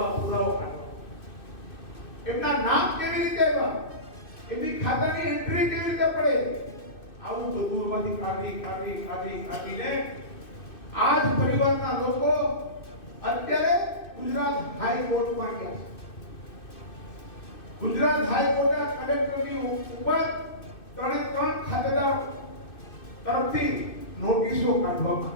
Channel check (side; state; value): right; late; 2.6 ms